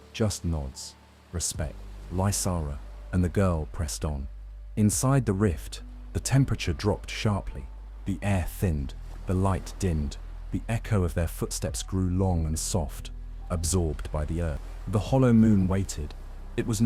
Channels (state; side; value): identical; both; correlation 1.00